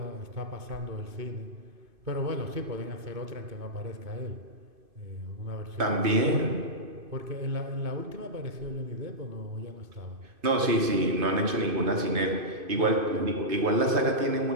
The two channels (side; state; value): left; late; 2.5 ms